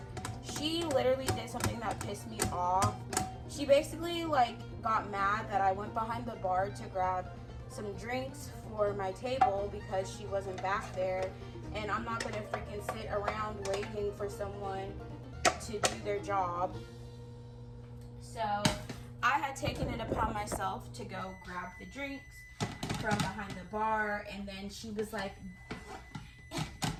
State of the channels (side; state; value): both; identical; correlation 1.00